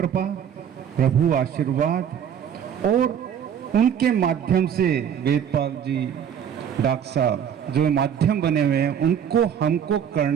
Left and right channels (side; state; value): left; quieter; 8.6 dB